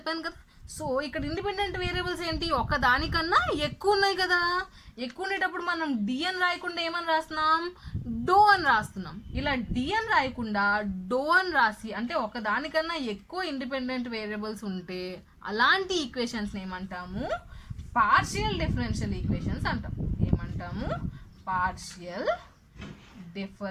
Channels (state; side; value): identical; both; correlation 1.00